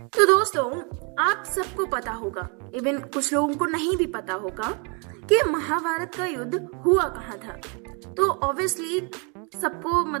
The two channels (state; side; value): quieter; left; 34.2 dB